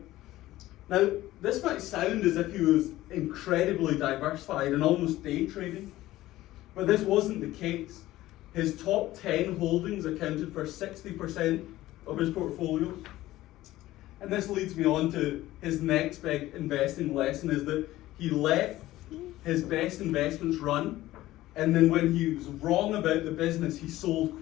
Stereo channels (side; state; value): right; quieter; 16.0 dB